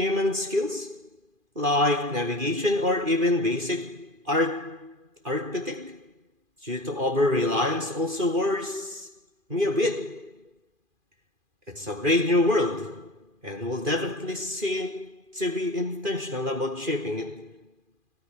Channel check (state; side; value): late; left; 2.4 ms